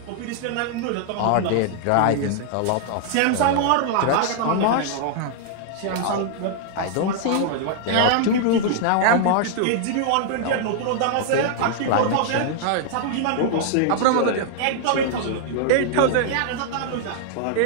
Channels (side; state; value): both; different; correlation -0.01